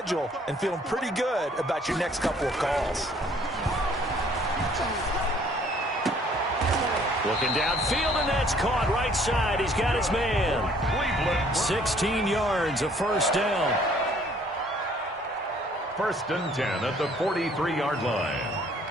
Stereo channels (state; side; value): normal; both; correlation 0.59